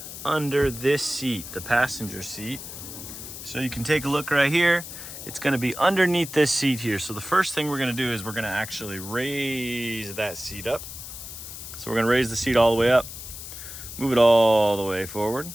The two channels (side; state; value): left; noise; hiss, 11 dB below the sound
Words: under this seat, the passenger seat. So you can take a look right here. It's going to be underneath this seat here. So the first thing we're going to do is we're going to actually raise that seat up. So we're going to raise the seat all the way up. Move it all the way forward.